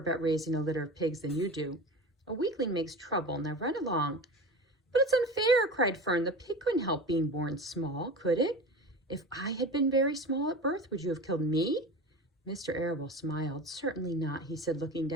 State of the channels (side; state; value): both; normal; correlation 0.31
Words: raising a litter of pigs than you do. A weakling makes trouble. Now run along." "But it's unfair," cried Fern. "The pig couldn't help being born small, could it? If I had been very small at birth, would you have killed me?" Mr. Arable smiled. "Certainly not," he said, looking